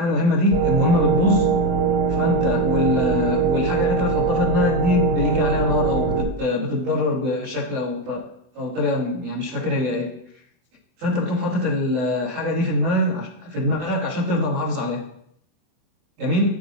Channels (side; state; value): left; late; 24 ms